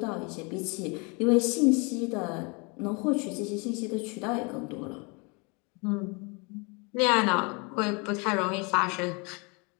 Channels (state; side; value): quieter; right; 30.8 dB